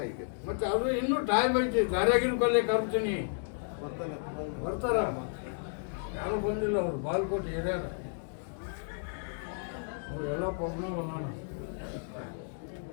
ಈಗ. ಮತ್ತೆ ಅದು ಇನ್ನೂ ಟೈಮ್ ಐತಿ. ದಾರ್ಯಾಗಿನ ಕೊಲ್ಲೇ ಕರ್ತೀನಿ, ಬರ್ತಾರ. ಯಾರು ಬಂದಿಲ್ಲ ಅವ್ರು ಬಾಗಲಕೋಟೆ ಹಿರಿಯರ. ಅವ್ರು ಎಲ್ಲ ಪ್ರಾಬ್ಲಮ್ ಅದಾನ.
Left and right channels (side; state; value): right; silent; digital silence